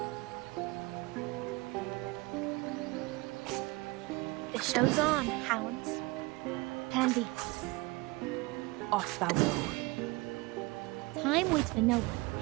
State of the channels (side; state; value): left; quieter; 23.9 dB